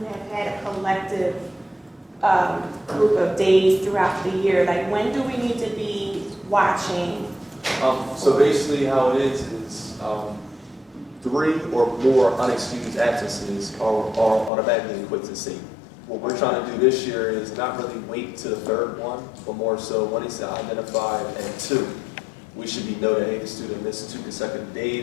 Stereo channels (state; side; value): drops out; right; at 14.5 s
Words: had a collective group of days throughout the year. Like, when do we need to be watching? So basically how it is 3 or more unexcused absences are automatically equipped to C. What we're trying to do this year is not really wait to the 3rd one, but more so when it's identified at 2, we should be noted, hey, the student missed 2 consecutive